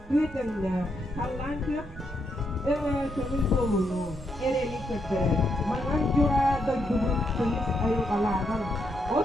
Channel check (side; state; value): both; normal; correlation 0.79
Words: bütünlü, kallan kök, kömür bolunu, ereli kötürü. Manan jura doydubun kıyıs ayukalardan,